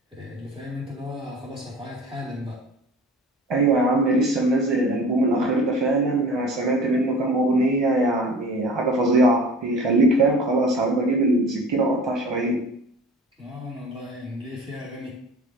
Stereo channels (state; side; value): normal; both; correlation 0.41